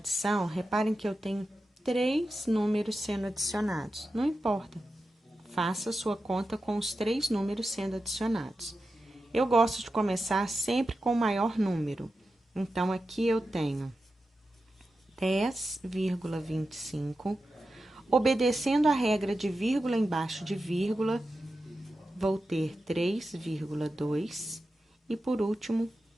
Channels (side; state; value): both; normal; correlation 0.91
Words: reparem que eu tenho 3 números sendo adicionados. Não importa. Faça sua conta com os 3 números sendo adicionados. Eu gosto de começar sempre com o maior número. Então, aqui eu tenho 10,25. Obedecendo a regra de vírgula embaixo de vírgula, vou ter 3,2 e, por último,